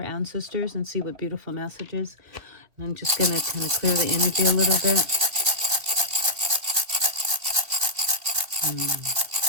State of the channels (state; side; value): late; left; 2.8 ms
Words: and see what beautiful messages. I'm just going to kind of clear the energy a little bit.